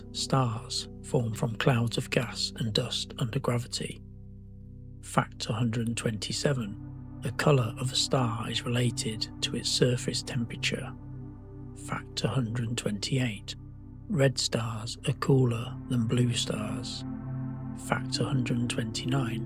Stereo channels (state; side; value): identical; both; correlation 1.00